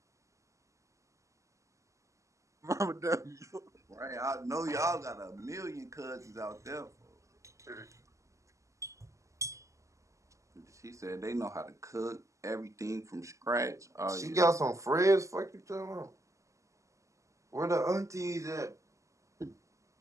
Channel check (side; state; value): left; late; 0.15 ms